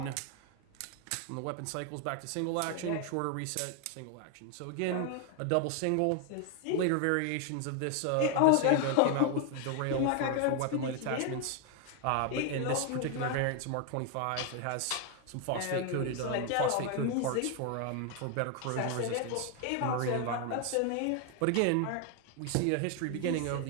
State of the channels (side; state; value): both; different; correlation 0.01